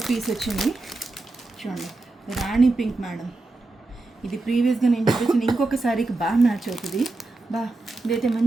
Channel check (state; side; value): quieter; left; 3.2 dB